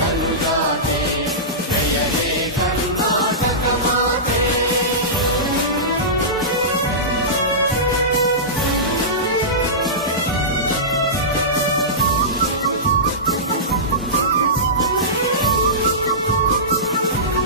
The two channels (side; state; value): both; normal; correlation -0.19